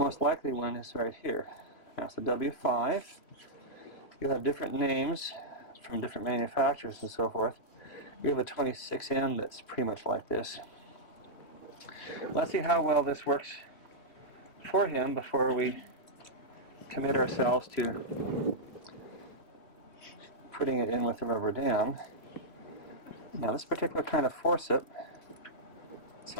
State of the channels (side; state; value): right; late; 3.0 ms